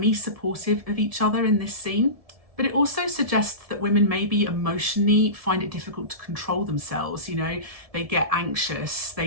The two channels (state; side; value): late; left; 1.7 ms